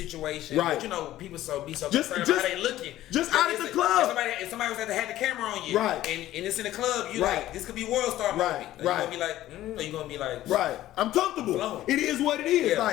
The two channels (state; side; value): quieter; right; 14.3 dB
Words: right? But you know, people be so concerned about how they looking. Just out at the club. If somebody was had the camera on you, right? And it's in the club, you like, this could be world star movie. Right. You gonna be like, or you gonna be like, right? I'm comfortable. Flowing. It is what it is. Yeah.